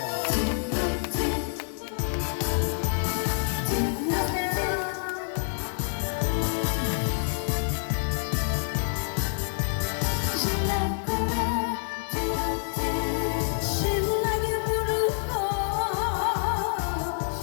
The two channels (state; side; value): silent; right; digital silence